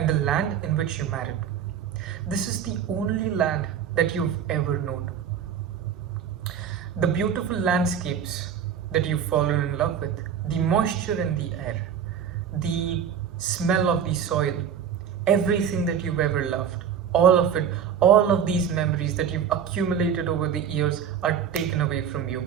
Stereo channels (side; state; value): left; quieter; 8.1 dB